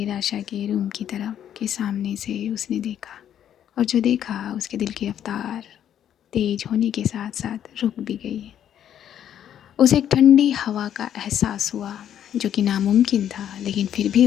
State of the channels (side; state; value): right; quieter; 10.1 dB